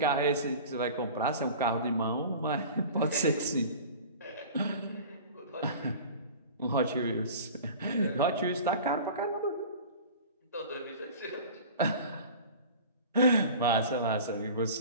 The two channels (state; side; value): inverted; both; correlation -0.39